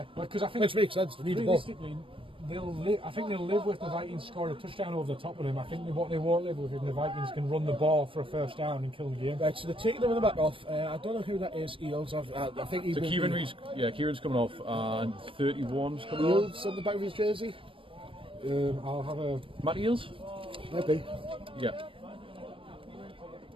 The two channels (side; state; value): left; late; 0.25 ms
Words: because I think Which makes sense, they need the ball. realistically, I think they'll live with the Vikings scoring a touchdown over the top of them. I think what they won't live with is the Vikings can run the ball for a first down and kill the game. Right, so they're taking the running back off. I don't know who that is. Eels. I think he So will Kieran be- Reed's, Kieran's coming off, and 31's coming on. Eels on the back of his jersey. I'll have a. Matt Eels? Maybe. Yeah.